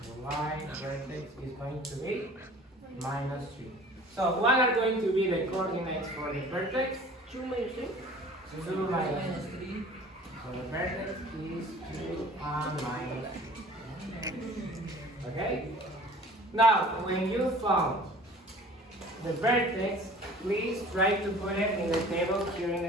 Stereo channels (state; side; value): normal; both; correlation 0.47